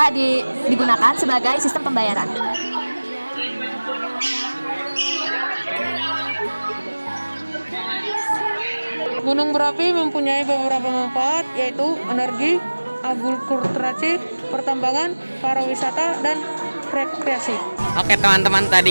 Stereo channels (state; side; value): inverted; both; correlation -1.00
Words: digunakan sebagai sistem pembayaran. Gunung berapi mempunyai beberapa manfaat, yaitu energi, agrikulturasi, pertambangan, pariwisata, dan rekreasi. Oke teman-teman, tadi